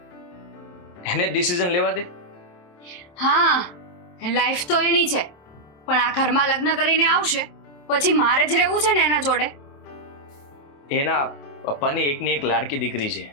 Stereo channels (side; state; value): right; late; 27 ms